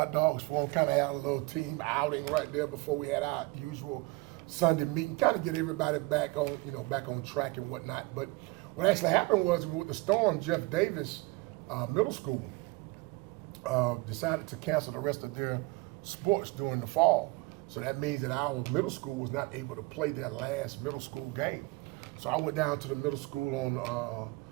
dogs for them, kind of had a little team outing right there before we had our usual Sunday meeting, kind of get everybody back on track and whatnot. But what actually happened was with the storm, Jeff Davis Middle School decided to cancel the rest of their sports during the fall. So that means that our middle school was not able to play their last middle school game. So I went down to the middle school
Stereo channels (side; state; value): left; quieter; 23.2 dB